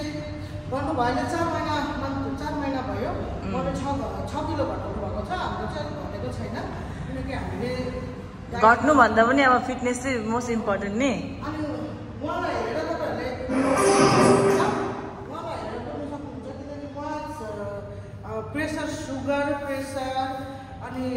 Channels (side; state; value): both; identical; correlation 1.00